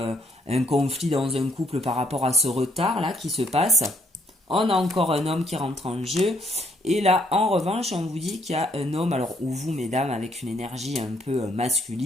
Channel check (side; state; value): both; normal; correlation 0.69